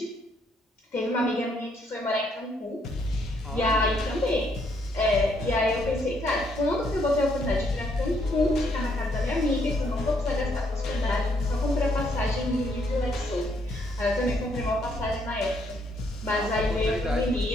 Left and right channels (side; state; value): both; normal; correlation 0.71